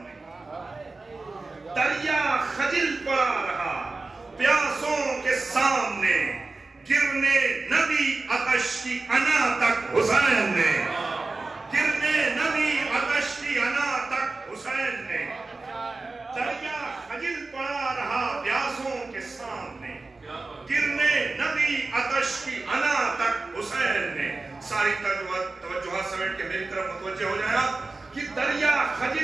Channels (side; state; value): left; quieter; 3.5 dB